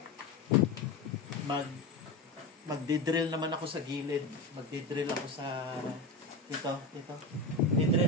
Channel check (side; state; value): right; quieter; 3.3 dB